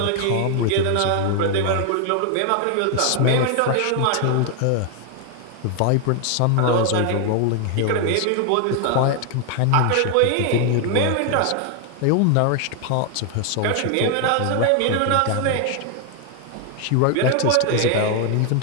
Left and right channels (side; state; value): both; different; correlation 0.00